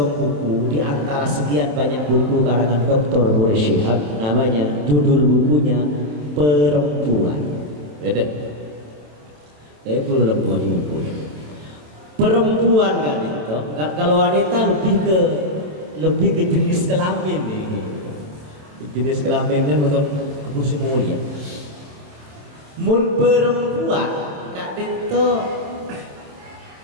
buku di antara sekian banyak buku karangan Dr. Boris Shihab, namanya judul bukunya Perempuan. Beda. Belum buku. Perempuan kan itu. Kalau wanita lebih ke jenis kelamin nih. Jenis kelamin kan untuk kursi mulia. Mun perempuan kak itu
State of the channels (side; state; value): left; late; 27 ms